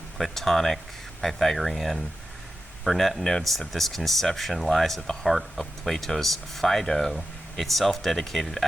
Platonic, Pythagorean. Burnet notes that this conception lies at the heart of Plato's Phaedo, itself dedicated,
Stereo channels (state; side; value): normal; both; correlation 0.91